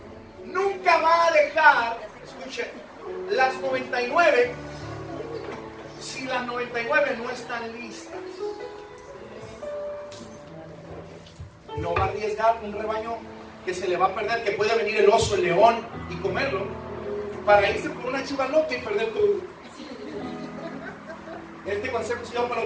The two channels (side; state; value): both; identical; correlation 1.00